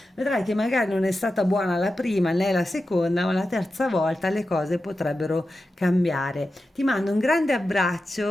Vedrai che magari non è stata buona la prima né la seconda, ma la terza volta le cose potrebbero cambiare. Ti mando un grande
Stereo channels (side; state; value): both; normal; correlation 0.91